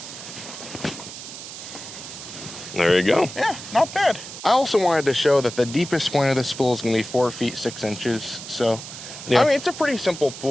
There you go. Yeah, not bad. I also wanted to show that the deepest point of this pool is going to be 4 feet 6 inches. So, I mean, it's a pretty simple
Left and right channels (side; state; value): right; noise; hiss, 11 dB below the sound